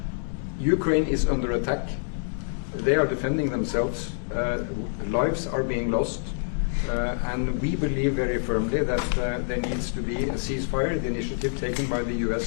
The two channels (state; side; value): silent; right; digital silence